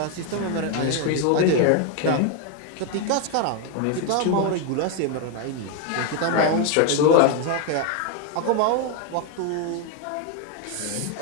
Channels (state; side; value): different; both; correlation 0.01